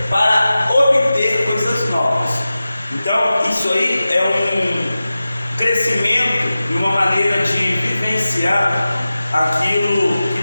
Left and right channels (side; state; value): both; inverted; correlation -0.95